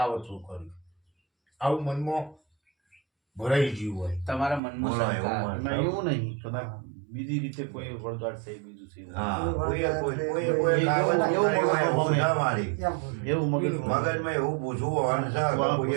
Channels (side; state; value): left; drops out; at 4.6 s